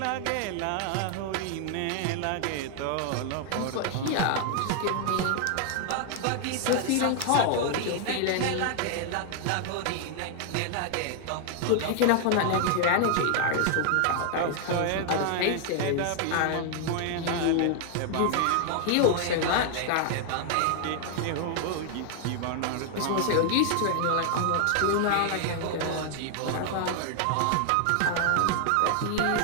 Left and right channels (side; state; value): both; different; correlation 0.00